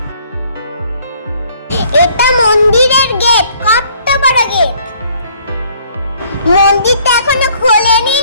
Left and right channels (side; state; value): both; inverted; correlation -0.61